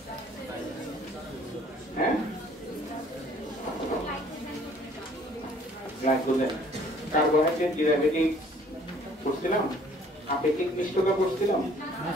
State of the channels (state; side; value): normal; both; correlation 0.56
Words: হ্যাঁ, গ্লাইকোজেন, কার্বোহাইড্রেট ডেরিভেটিভ করছিলাম, আপেক্ষিক মিষ্টতা করছিলাম,